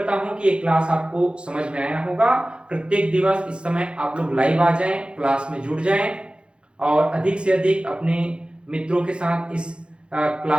हूं कि ये क्लास आपको समझ में आया होगा। प्रत्येक दिवस इस समय आप लोग लाइव आ जाएं, क्लास में जुड़ जाएं और अधिक से अधिक अपने मित्रों के साथ इस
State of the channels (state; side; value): late; left; 0.056 ms